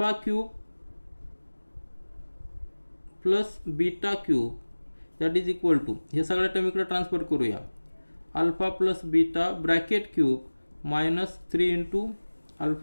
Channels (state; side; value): inverted; both; correlation -1.00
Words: plus beta cube that is equal to हे सगळ्या term इकडे transfer करूया. Alpha plus beta bracket cube -3 into